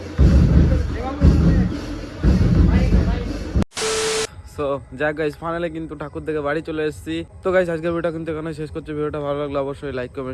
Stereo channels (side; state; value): both; identical; correlation 1.00